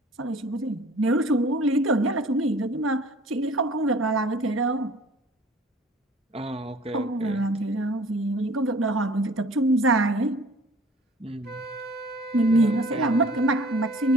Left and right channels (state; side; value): normal; both; correlation 0.49